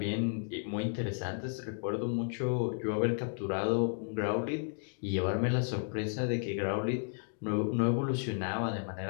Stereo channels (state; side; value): silent; right; digital silence